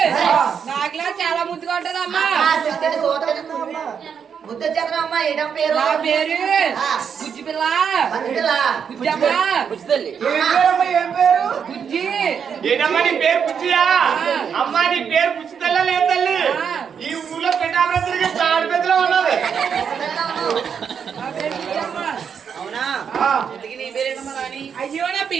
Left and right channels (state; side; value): quieter; left; 7.2 dB